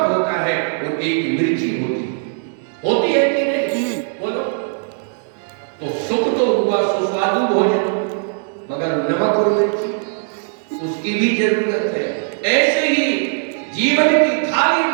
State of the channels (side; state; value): left; silent; 64 dB below the other